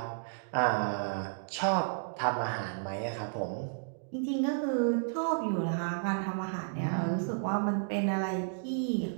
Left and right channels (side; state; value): left; silent; digital silence